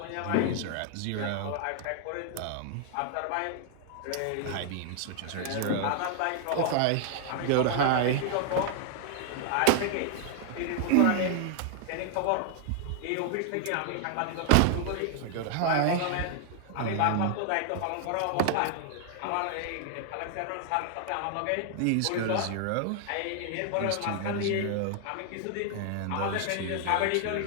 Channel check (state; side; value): different; both; correlation 0.00